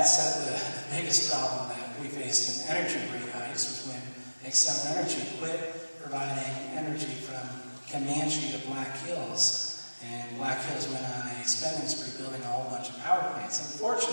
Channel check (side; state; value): both; inverted; correlation -1.00